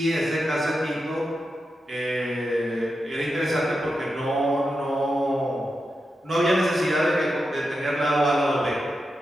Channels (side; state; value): both; normal; correlation 0.88